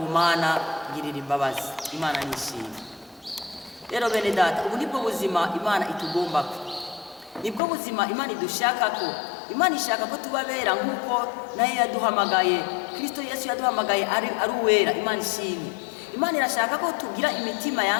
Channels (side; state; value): right; drops out; at 7.6 s